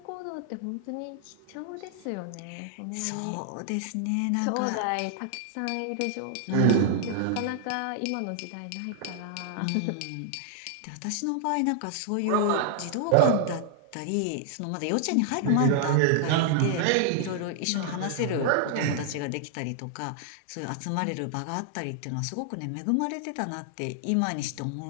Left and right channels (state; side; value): different; both; correlation -0.01